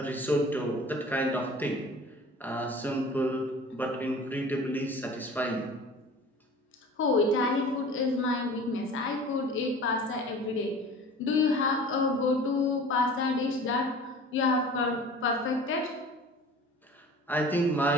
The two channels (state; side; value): normal; both; correlation 0.42